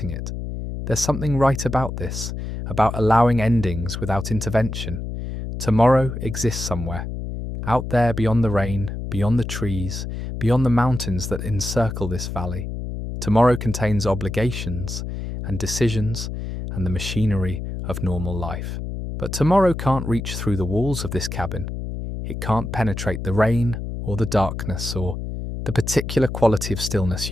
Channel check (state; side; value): noise; left; hum, 6 dB below the sound